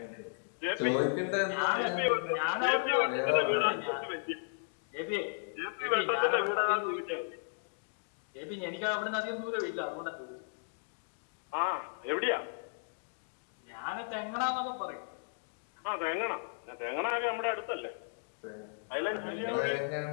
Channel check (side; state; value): right; silent; digital silence